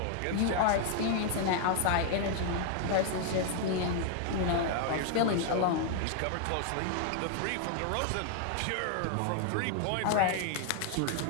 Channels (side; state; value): both; different; correlation 0.00